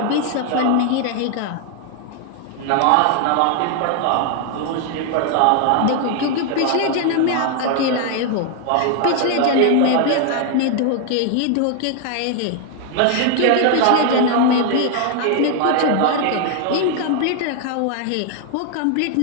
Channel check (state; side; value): different; both; correlation 0.00